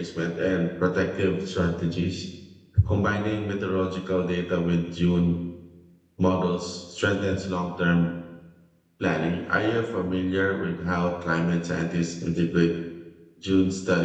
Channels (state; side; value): identical; both; correlation 1.00